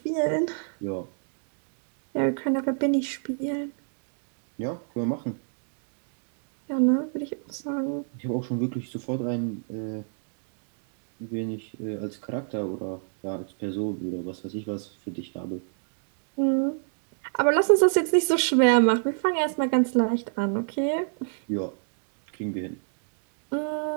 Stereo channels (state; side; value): silent; left; digital silence